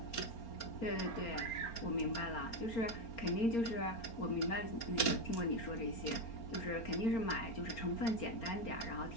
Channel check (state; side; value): late; right; 4.3 ms